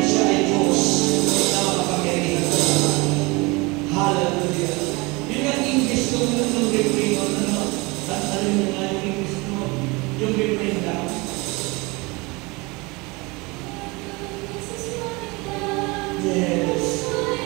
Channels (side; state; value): left; quieter; 25.5 dB